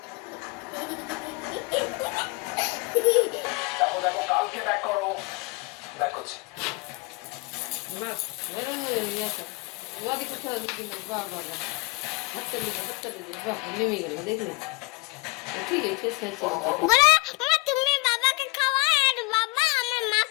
তুমি বাবাকে খাওয়াও আর বাবা আমার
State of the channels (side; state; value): right; quieter; 25.3 dB